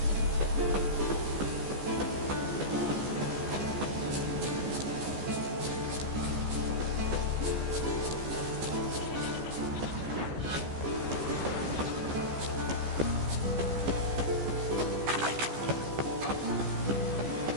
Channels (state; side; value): late; left; 14 ms